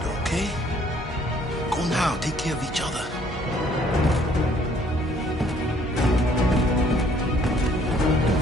okay? Go now. Take care of each other.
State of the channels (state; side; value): normal; both; correlation 0.62